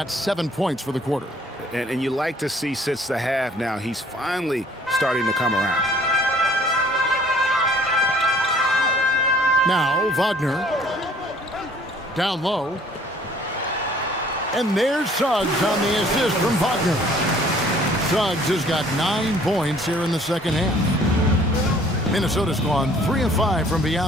7 points for the quarter. And you like to see since the half now, he's finally starting to come around. Now, Wagner. Down low. And there's Suggs on the assist from Wagner. Suggs has got 9 points here in the second half. Minnesota's gone 3 of 5 from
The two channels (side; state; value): both; normal; correlation 0.56